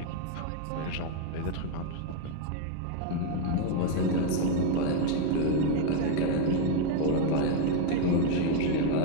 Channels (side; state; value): both; different; correlation 0.00